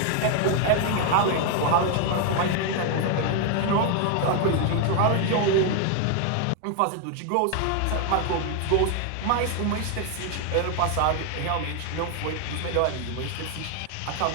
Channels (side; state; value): both; different; correlation 0.00